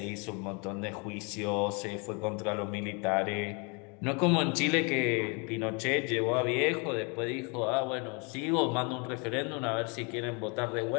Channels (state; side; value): quieter; right; 32.8 dB